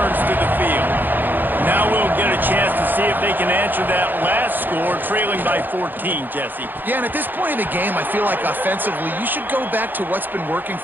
to the field. Now Now we'll get a chance to see if they can answer that last score, trailing by 14, Jesse. Yeah, and at this point in the game, I feel like offensively, you should go back to what's been working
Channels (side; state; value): left; late; 0.090 ms